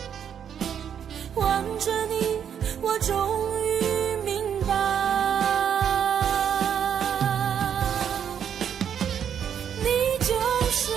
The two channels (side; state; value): left; quieter; 8.4 dB